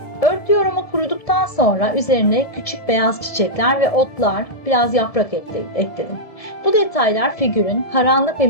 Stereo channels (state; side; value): late; right; 1.7 ms